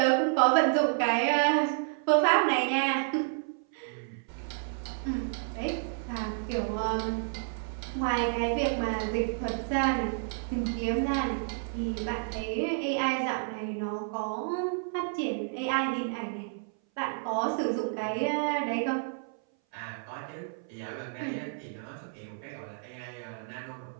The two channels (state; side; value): silent; left; 57 dB below the other